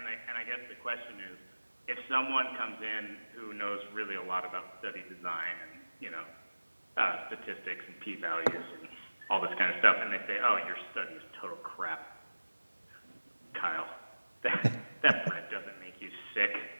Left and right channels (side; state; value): both; inverted; correlation -1.00